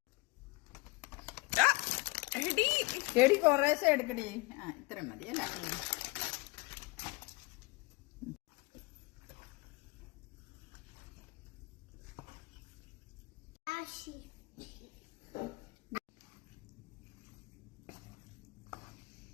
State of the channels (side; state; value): right; quieter; 25.0 dB